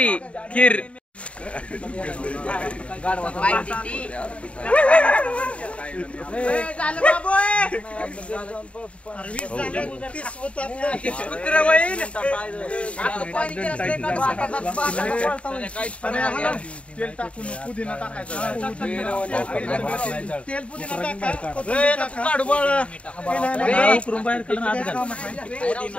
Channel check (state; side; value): late; right; 0.062 ms